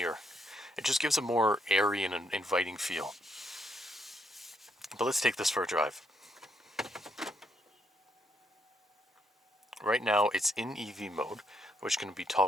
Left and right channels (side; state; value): both; normal; correlation 0.75